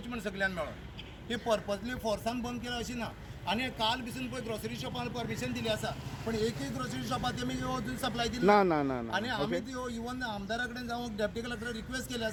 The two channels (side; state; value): both; identical; correlation 1.00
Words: म्हणून सगळ्यांनी मेळून. ती पर्पजली फोर्सान बंद केला अशी ना. आनी काल पसून पळय ग्रोसरी शॉपान परमिशन दिली आसा, पण एकूय ग्रोसरी शॉपाक तेमी अजून सप्लाय दिली ना ना ना आनी आमी ती इवन आमदारा कडेन जावं डेप्युटी कलेक्टर रिक्वेस्ट केली